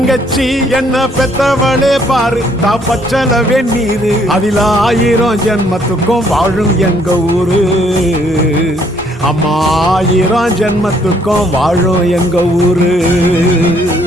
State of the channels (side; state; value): both; normal; correlation 0.66